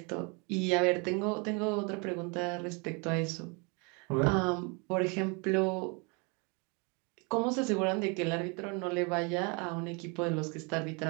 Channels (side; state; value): left; quieter; 32.1 dB